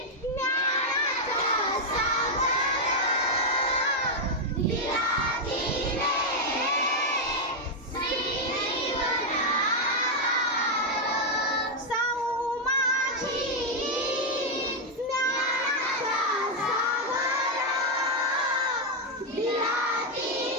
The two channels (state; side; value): normal; both; correlation 0.00